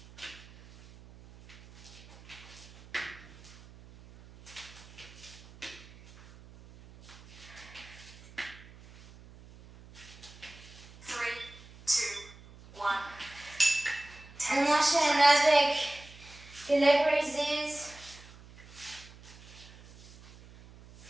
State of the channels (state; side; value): noise; right; hum, 20 dB below the sound